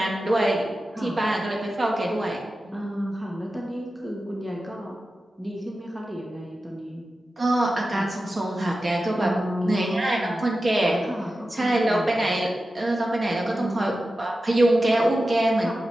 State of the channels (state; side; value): normal; both; correlation 0.93